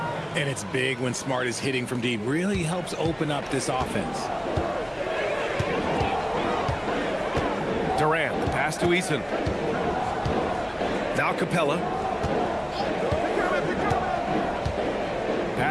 And it's big when Smart is hitting from deep. Really helps open up this offense. Durant, the pass to Eason. Now Capella.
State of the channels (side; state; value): both; identical; correlation 1.00